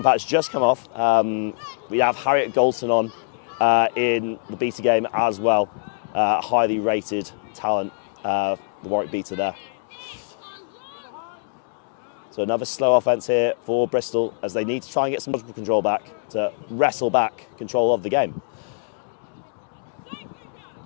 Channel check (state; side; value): silent; right; 63 dB below the other